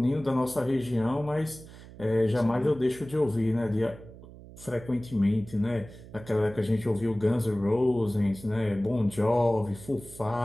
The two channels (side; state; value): right; noise; hum, 18 dB below the sound